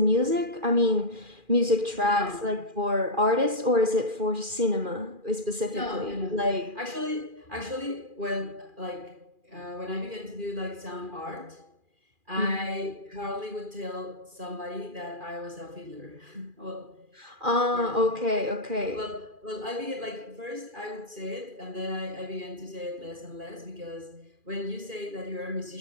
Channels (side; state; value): left; late; 2.4 ms